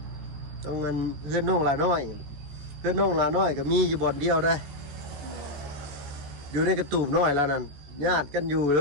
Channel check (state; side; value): late; left; 14 ms